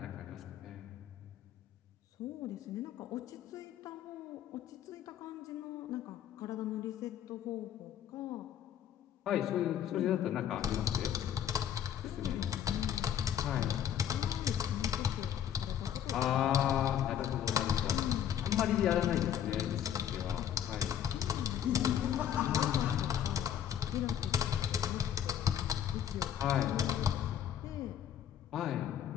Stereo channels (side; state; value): right; quieter; 9.8 dB